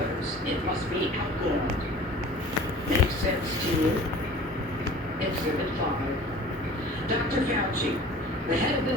it must be outlawed. Makes sense to you? Exhibit 5. Dr. Fauci, the head of the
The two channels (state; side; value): normal; both; correlation 0.44